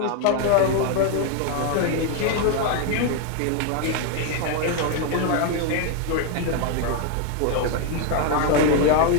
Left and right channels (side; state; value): both; different; correlation 0.00